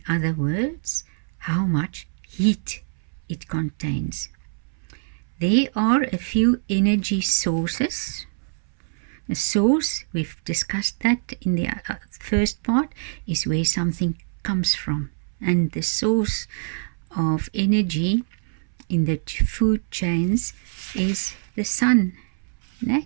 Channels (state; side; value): silent; left; 62 dB below the other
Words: other words, how much heat it contains. There are a few energy sources. A source, we've discussed that in the first part, is where something comes from. And the source of energy in the food chains is the sun.